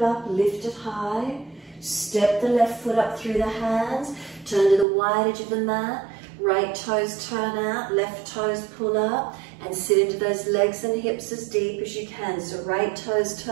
up, lift it high. Step the left foot up through the hands. Turn to the wide edge of the mat. Right toes turn out, left toes pull up. And sit into those legs and hips as deep as you can. So right toes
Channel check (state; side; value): drops out; left; at 4.9 s